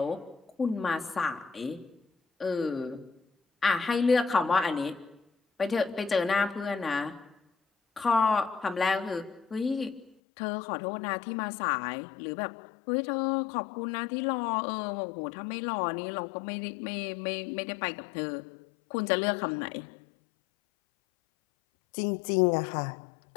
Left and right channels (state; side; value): drops out; right; at 10.2 s